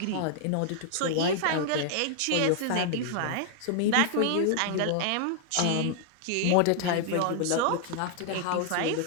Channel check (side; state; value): both; different; correlation 0.00